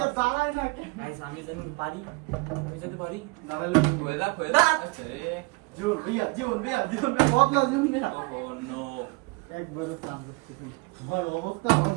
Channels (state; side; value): quieter; left; 27.4 dB